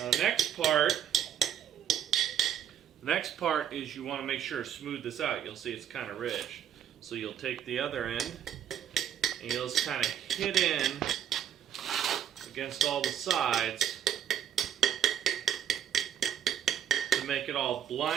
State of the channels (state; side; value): quieter; left; 9.6 dB